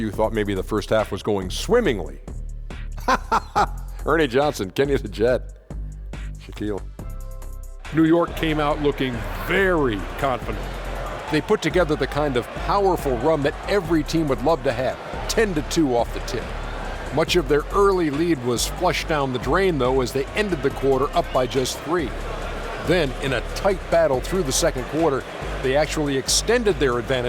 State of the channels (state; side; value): identical; both; correlation 1.00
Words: thought maybe the first half was going swimmingly. Ernie Johnson, Kenny the Jet, Shaquille. New York came out looking very confident. They put together the kind of powerful run that every team would love to have, 10-2 off the tip. Much of their early lead was flushed down the drain, though, as they ended the quarter up by just 3. Then, in a tight battle through the second quarter, they actually extended their